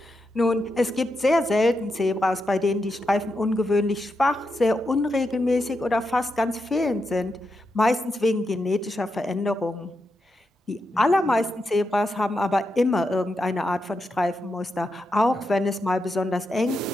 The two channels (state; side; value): normal; both; correlation 0.86